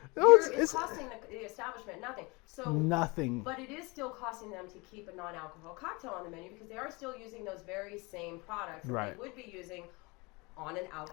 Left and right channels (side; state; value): right; quieter; 26.3 dB